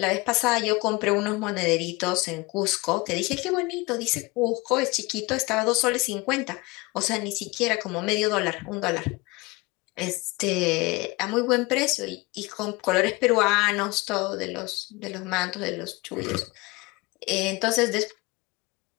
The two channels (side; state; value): right; quieter; 23.6 dB